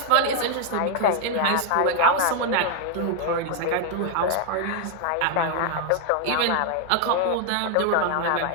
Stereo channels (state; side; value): different; both; correlation 0.00